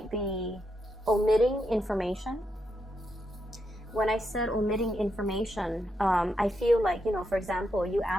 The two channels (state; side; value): normal; both; correlation 0.82